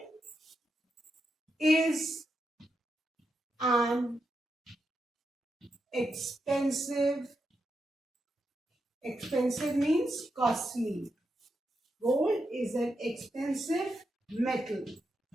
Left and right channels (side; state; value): both; normal; correlation 0.85